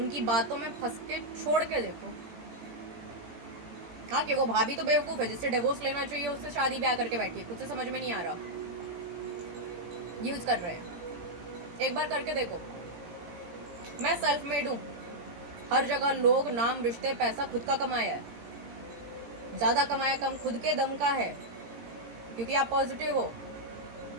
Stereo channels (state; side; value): late; left; 17 ms